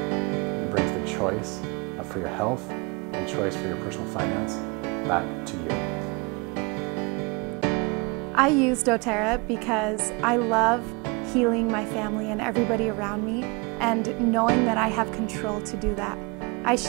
brings the choice for your health and choice for your personal finance back to you. I use doTERRA because I love healing my family and everybody around me, and knowing that I have control to do that. I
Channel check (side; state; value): left; quieter; 29.1 dB